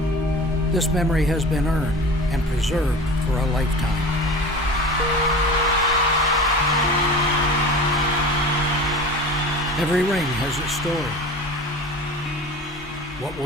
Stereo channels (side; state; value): both; normal; correlation 0.36